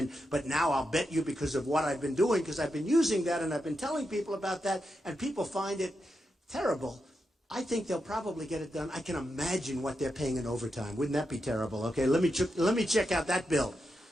But now I'll bet you because of what I've been doing, because I've been using that and I've been telling people about that, and people find it terrible. I think they'll probably get it done. I can imagine what they're paying in overtime. Wouldn't that be terrible? Okay, let me check out that bill.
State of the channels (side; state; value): both; normal; correlation 0.86